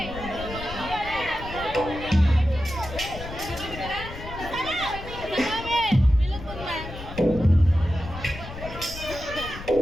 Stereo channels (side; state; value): left; noise; rumble, 11 dB below the sound